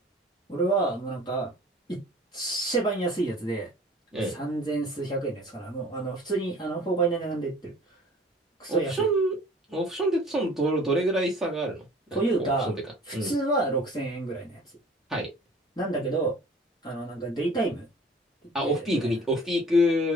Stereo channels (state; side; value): normal; both; correlation 0.48